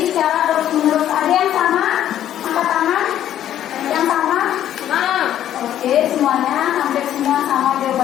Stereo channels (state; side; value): quieter; right; 11.3 dB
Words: secara terus-menerus. Ada yang sama? Angkat tangan. Yang sama? Oke, semuanya, hampir semua sama